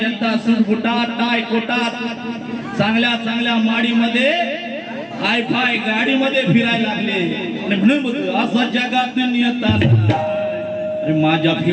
जनता सुटबुटात टाय कोटात चांगल्या चांगल्या माडीमध्ये हाय फाय गाडीमध्ये फिरायला लागले आणि म्हणून बोलतो असं जगात नियताना माझ्या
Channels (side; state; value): both; identical; correlation 1.00